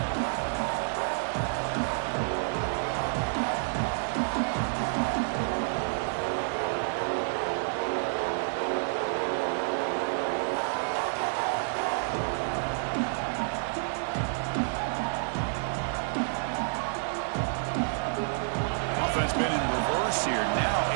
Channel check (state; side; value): silent; left; 58 dB below the other